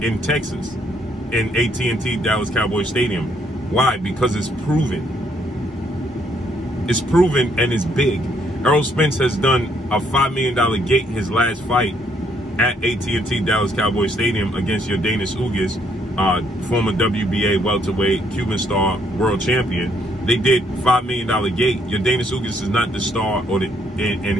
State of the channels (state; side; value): normal; both; correlation 0.70